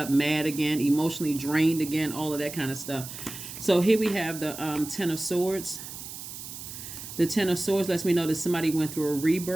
mad again, emotionally drained again, all of that kind of stuff. So here we have the 10 of Swords. The 10 of Swords lets me know that somebody went through a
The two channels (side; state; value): right; noise; hiss, 11 dB below the sound